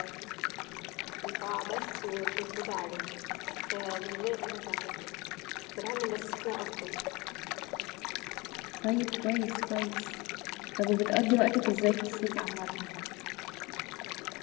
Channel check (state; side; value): quieter; right; 24.6 dB